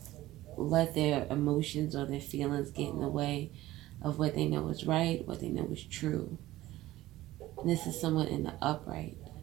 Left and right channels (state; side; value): quieter; left; 16.2 dB